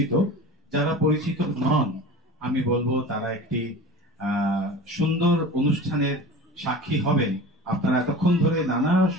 যারা পরিচিত নন, আমি বলবো তারা একটি সুন্দর অনুষ্ঠানের সাক্ষী হবেন। আপনারা এতক্ষণ ধরে নানা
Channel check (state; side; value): normal; both; correlation 0.36